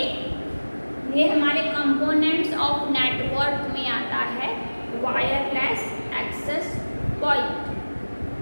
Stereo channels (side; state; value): both; inverted; correlation -1.00